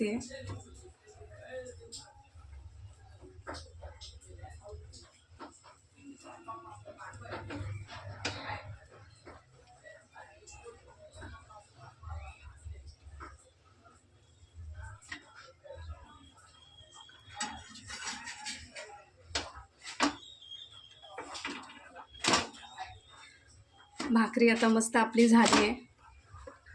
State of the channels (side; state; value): both; identical; correlation 1.00